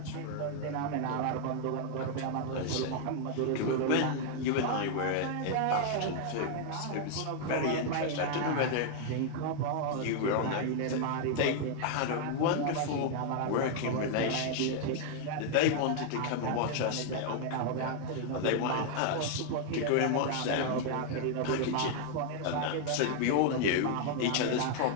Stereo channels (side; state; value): both; different; correlation 0.00